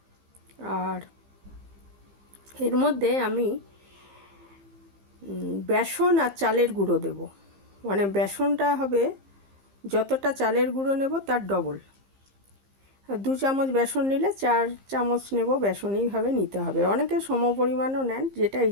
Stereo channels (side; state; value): left; late; 15 ms